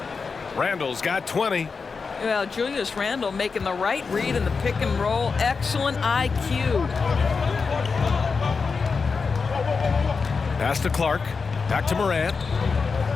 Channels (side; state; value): right; quieter; 4.9 dB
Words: Randle's got 20. Well, Julius Randle making the right read in the pick and roll. Excellent IQ. Pass to Clark, back to Morant.